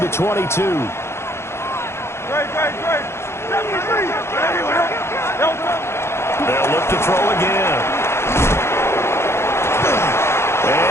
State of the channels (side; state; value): right; late; 0.12 ms